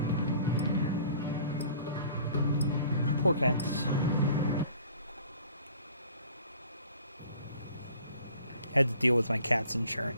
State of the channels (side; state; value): both; inverted; correlation -0.52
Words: Poor cats. Had to deal with my cat's